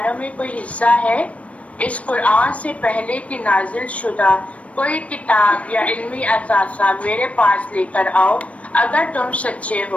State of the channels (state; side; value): late; right; 0.064 ms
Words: میں کوئی حصہ ہے. اس قرآن سے پہلے کی نازل شدہ کوئی کتاب یا علمی اثاثہ میرے پاس لے کر آؤ اگر تم سچے